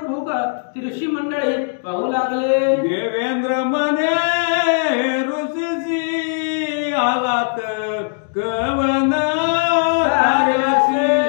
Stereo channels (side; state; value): right; silent; digital silence